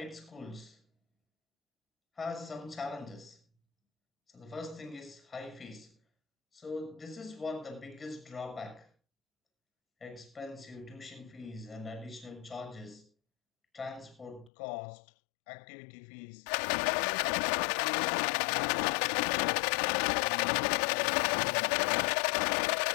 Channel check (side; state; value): right; drops out; at 14.5 s